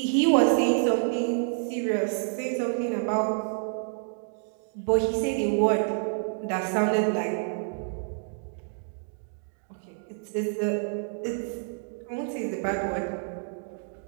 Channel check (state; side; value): silent; left; digital silence